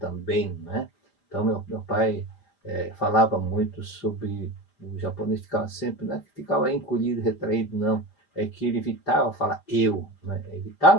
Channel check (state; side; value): late; right; 4.6 ms